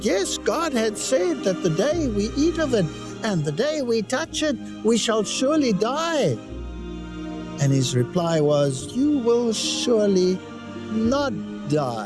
yes, God had said that the day we eat of it and the day we touch it, we shall surely die. And his reply was, you will surely not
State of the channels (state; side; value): identical; both; correlation 1.00